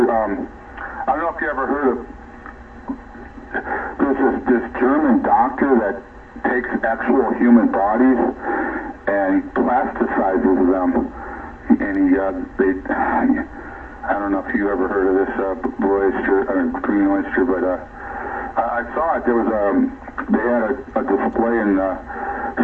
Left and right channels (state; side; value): identical; both; correlation 1.00